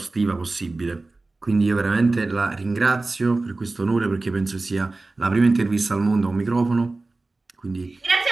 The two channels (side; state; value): left; quieter; 3.3 dB